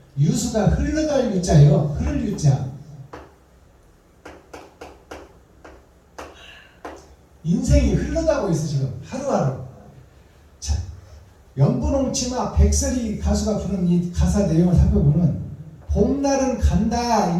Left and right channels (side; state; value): both; identical; correlation 1.00